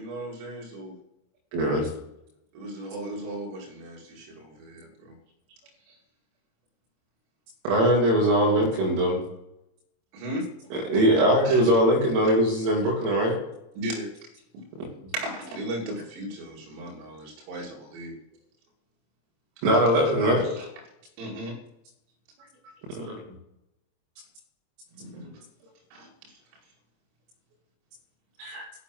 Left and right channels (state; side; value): late; left; 27 ms